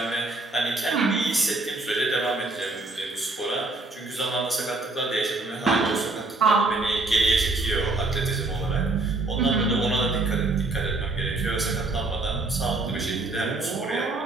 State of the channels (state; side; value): quieter; left; 3.2 dB